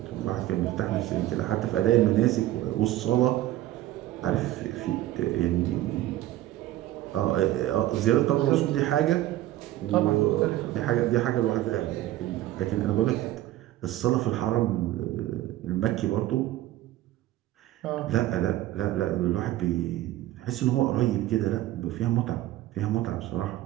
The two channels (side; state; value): left; quieter; 14.7 dB